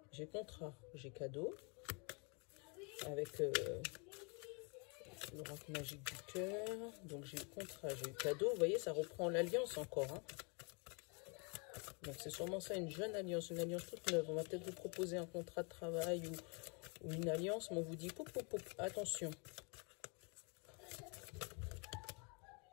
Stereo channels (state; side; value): quieter; right; 33.7 dB